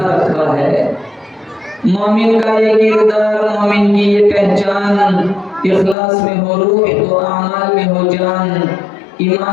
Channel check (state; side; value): drops out; right; at 6.0 s